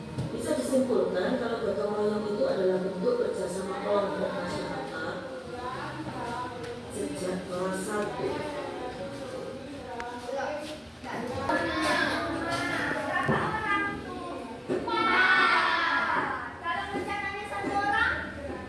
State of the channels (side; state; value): both; identical; correlation 1.00